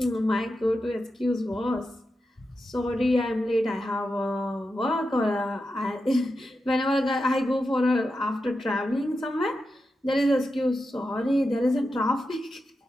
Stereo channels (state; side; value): normal; both; correlation 0.89